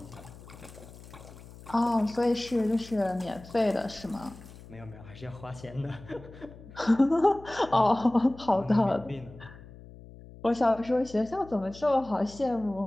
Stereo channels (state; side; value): noise; left; hum, 18 dB below the sound